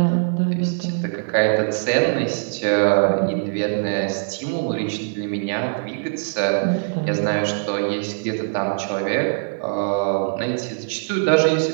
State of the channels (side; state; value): left; silent; 64 dB below the other